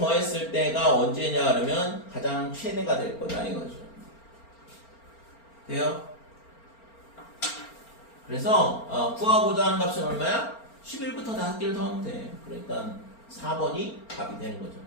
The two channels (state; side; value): late; right; 4.4 ms